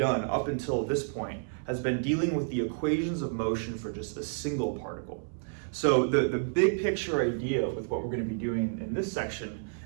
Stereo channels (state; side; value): silent; left; 58 dB below the other